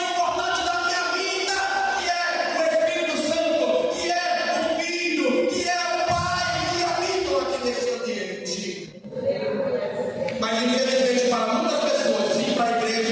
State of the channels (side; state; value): both; identical; correlation 1.00